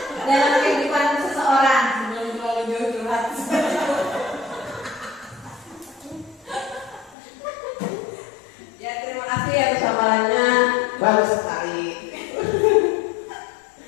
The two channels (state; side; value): drops out; right; at 7.2 s